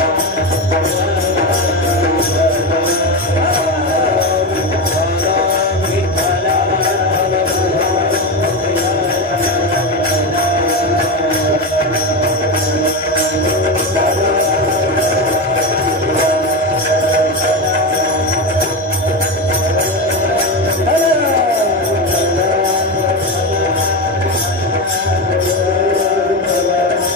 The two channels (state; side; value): normal; both; correlation 0.16